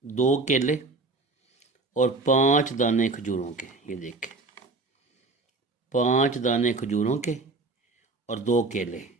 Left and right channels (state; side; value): quieter; left; 3.4 dB